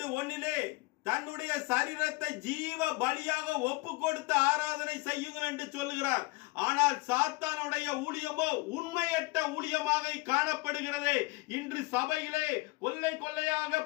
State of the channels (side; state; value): right; quieter; 23.8 dB